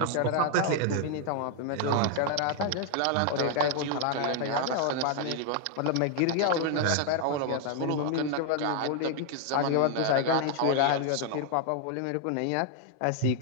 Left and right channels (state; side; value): different; both; correlation 0.00